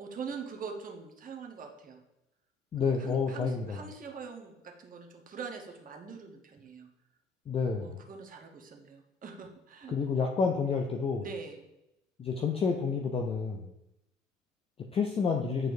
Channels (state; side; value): quieter; right; 4.2 dB